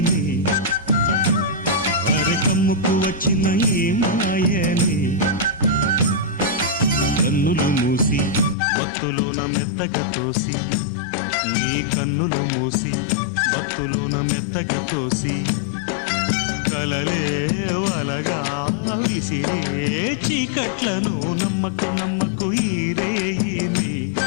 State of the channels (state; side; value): drops out; right; at 8.6 s